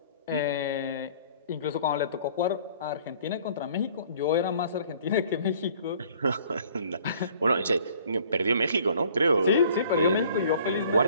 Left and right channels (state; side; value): inverted; both; correlation -0.54